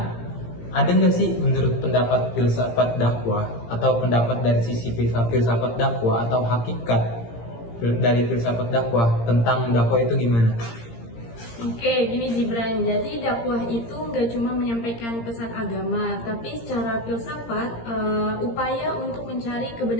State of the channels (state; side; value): late; right; 17 ms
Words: ada nggak sih menurut pendapat filsafat dakwah atau pendapat dari sisi filsafat dakwah atau hakikat dari filsafat dakwah tentang dakwah itu gimana? Oke, gini Gibran. Jadi dakwah itu nggak cuma menyampaikan pesan agama, tapi secara filsafat upaya untuk mencari